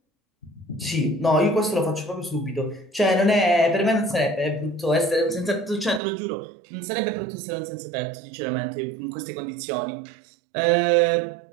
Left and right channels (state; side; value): drops out; left; at 6.0 s